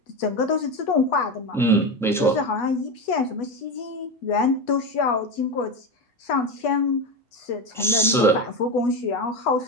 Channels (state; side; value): normal; both; correlation 0.18